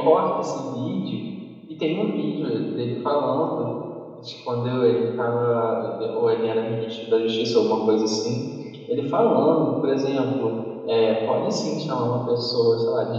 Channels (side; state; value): both; identical; correlation 1.00